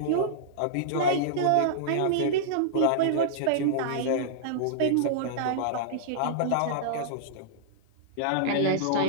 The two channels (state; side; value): different; both; correlation -0.02